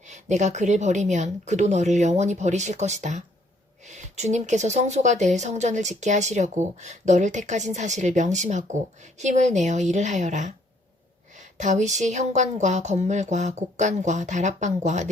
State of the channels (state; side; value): normal; both; correlation 0.66